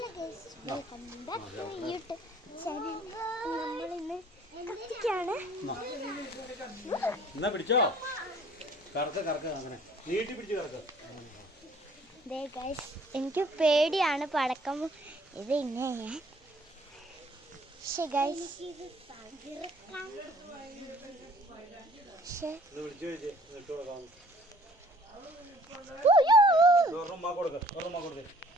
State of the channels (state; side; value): normal; both; correlation 0.56